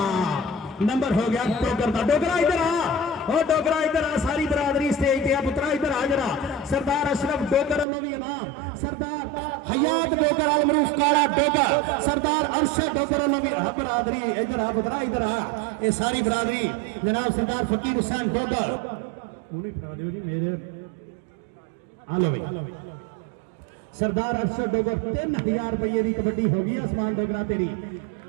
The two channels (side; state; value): left; drops out; at 7.9 s